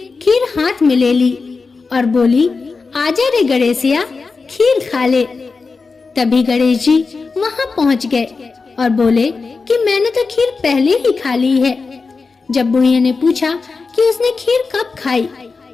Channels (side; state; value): right; quieter; 4.4 dB